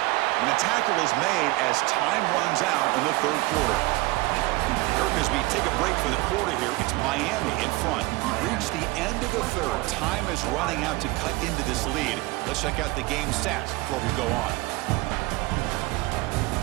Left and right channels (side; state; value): left; quieter; 21.6 dB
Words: And the tackle is made as time runs out in the 3rd quarter. Kirk, as we take a break for the quarter here, it's Miami in front. We've reached the end of the 3rd. Time is running out to cut into this lead. Let's check out the game stats before we go on.